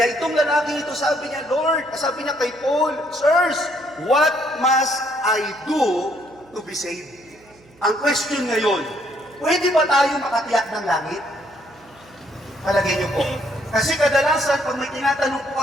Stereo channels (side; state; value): right; noise; hum, 28 dB below the sound